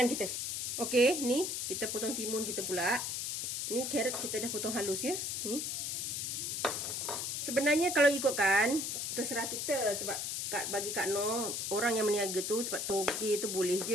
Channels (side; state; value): left; noise; hiss, 2 dB below the sound